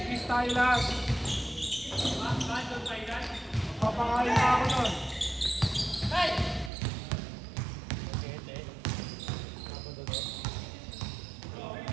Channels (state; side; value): drops out; left; at 6.7 s